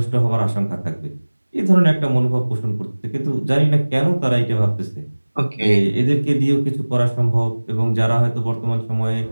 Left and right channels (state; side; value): inverted; both; correlation -1.00